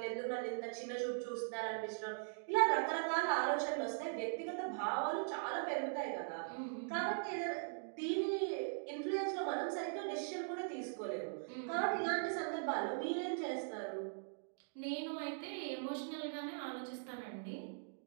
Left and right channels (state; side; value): silent; left; digital silence